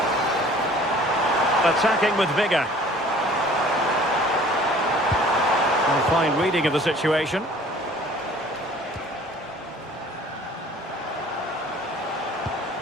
Attacking with vigour. A fine reading of the situation.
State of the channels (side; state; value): both; normal; correlation 0.50